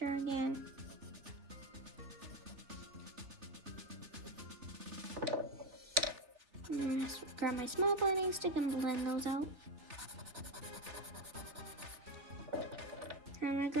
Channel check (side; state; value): left; late; 3.6 ms